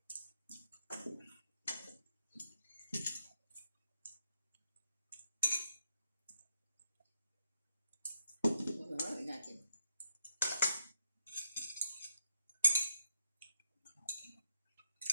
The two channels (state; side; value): inverted; both; correlation -0.80